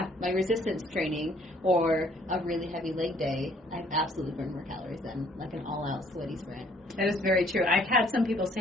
my resistance training or a really heavy leg day, I've absolutely burned more calories than like an all-out sweaty sprint. That is very true. I've had some people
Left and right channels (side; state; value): both; normal; correlation 0.61